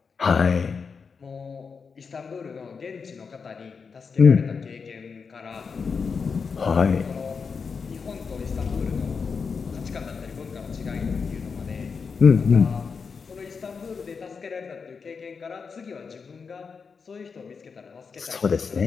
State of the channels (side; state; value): right; quieter; 5.5 dB